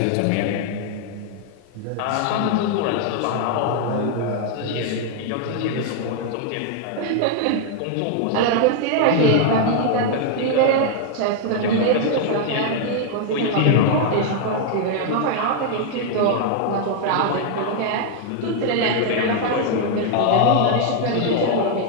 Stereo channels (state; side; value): different; both; correlation 0.00